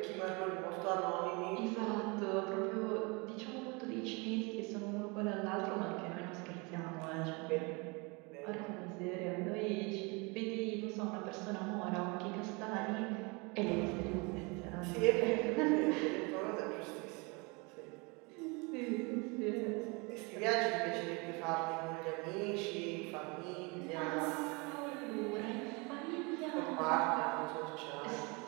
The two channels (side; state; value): left; quieter; 28.8 dB